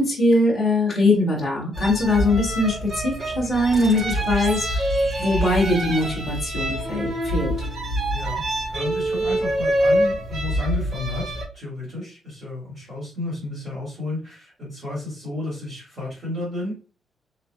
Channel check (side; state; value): both; normal; correlation 0.72